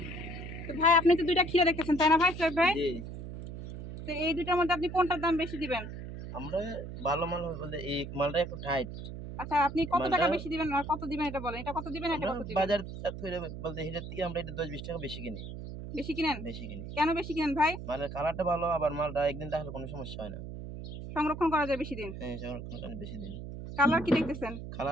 তো ভাই, আপনি তো দুইটা ক্ষীরা দেখতেছেন, তাই না ভাই সোহেব ভাই? তো এই দুইটার মধ্যে আপনি কোনটার দাম বেশি দিবেন? আমরা ভালো মাল বলতে এই মালটা একটু টাইট। আচ্ছা, আপনি কত টাকা বেশি দিবেন আর কত দিবেন এটা বলেন। এটা কত দিবেন, এটা কত দিবেন? বাজার বলতে এটার থেকে আমরা এটা 10-20 টাকা বেশি কিনি। বেশি কিনেন? বেশি কিনি। কেন বেশি কিনেন ভাই? মালের কালারটা ভালো, আবার মালটা একদিন রাখলে কোনো সমস্যা হয় না। সংরক্ষণ করা যায় বেশি দিন? হ্যাঁ, সংরক্ষণ করা বেশি দিন। কালার কি দেখতেছেন?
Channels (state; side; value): noise; right; hum, 9 dB below the sound